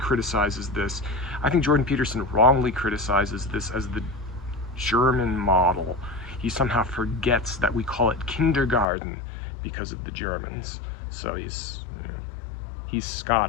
this. I think Jordan Peterson wrongly criticizes this as the German model. He somehow forgets that we call it kindergarten because of the Germans. So he's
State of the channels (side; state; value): right; drops out; at 8.8 s